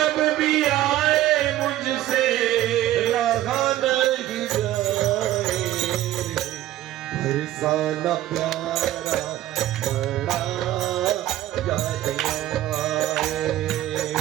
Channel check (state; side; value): quieter; left; 14.1 dB